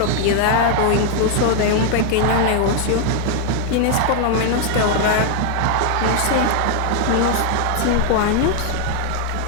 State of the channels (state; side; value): different; both; correlation 0.00